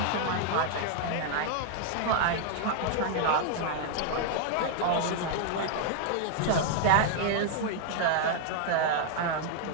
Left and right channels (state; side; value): different; both; correlation 0.00